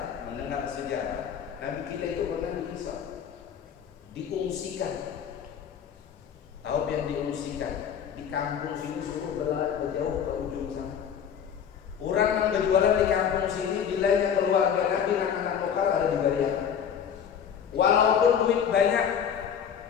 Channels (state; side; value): quieter; right; 8.2 dB